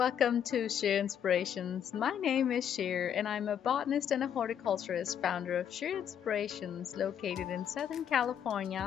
to Sheer Inspirations. My name is Sheer and I'm a botanist and a horticulturist, founder of Sheer Inspirations, located in Southern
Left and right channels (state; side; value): quieter; right; 8.9 dB